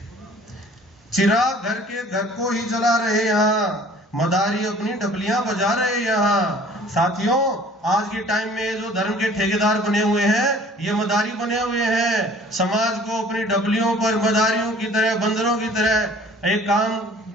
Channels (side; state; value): both; normal; correlation 0.51